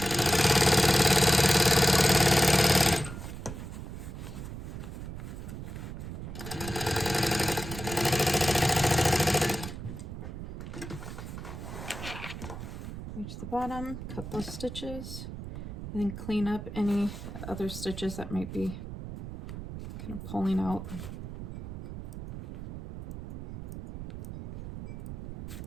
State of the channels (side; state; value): right; noise; rumble, 9 dB below the sound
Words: Reach the bottom, cut those stitches, and then clean up any other stitches that might be kind of pulling out.